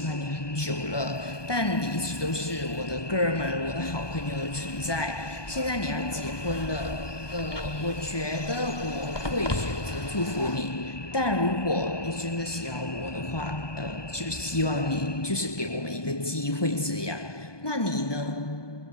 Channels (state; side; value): late; right; 1.2 ms